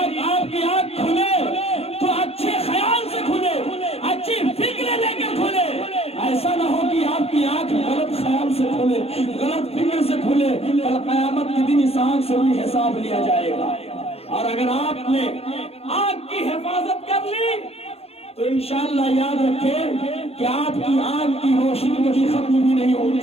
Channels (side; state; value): right; late; 0.29 ms